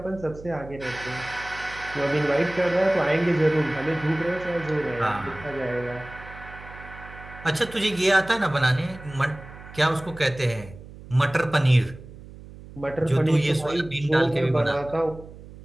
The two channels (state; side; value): noise; right; hum, 17 dB below the sound